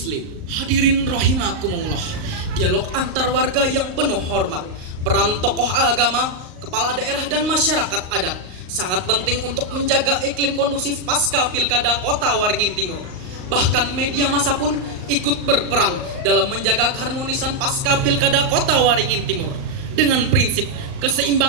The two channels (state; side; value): late; left; 38 ms